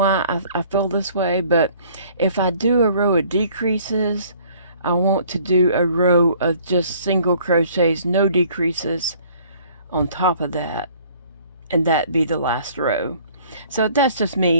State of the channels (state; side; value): inverted; both; correlation -0.56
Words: I feel this way, but if I do a row of decreases, I want to do a row of just single crochets, no decreases on top of that, and that be the last row. So that's just